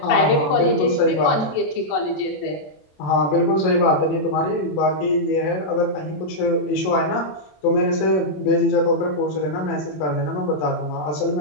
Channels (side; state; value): right; late; 27 ms